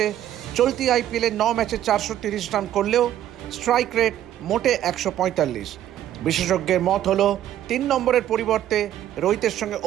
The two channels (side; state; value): left; quieter; 11.9 dB